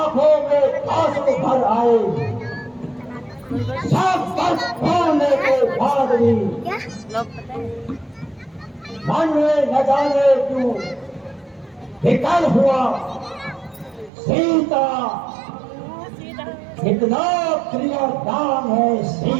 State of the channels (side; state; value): left; drops out; at 14.1 s